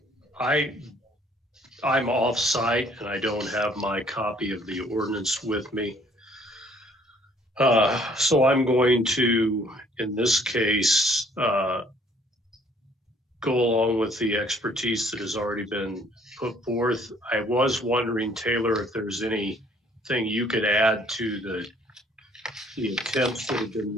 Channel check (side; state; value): both; normal; correlation 0.60